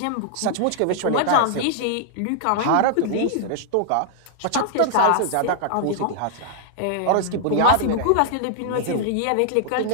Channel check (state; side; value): different; both; correlation -0.01